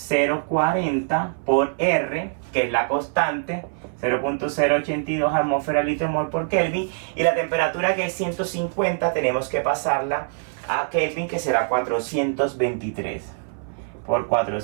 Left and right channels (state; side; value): silent; left; 59 dB below the other